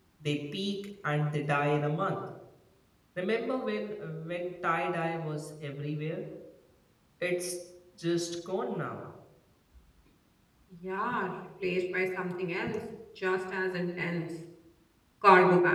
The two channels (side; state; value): both; identical; correlation 1.00